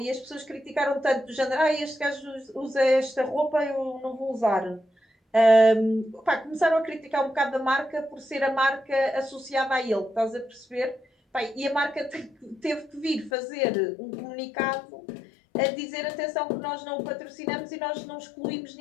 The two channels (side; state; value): right; drops out; at 13.3 s